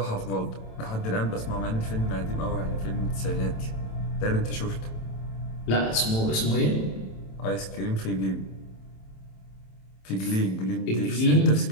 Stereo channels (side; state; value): right; late; 27 ms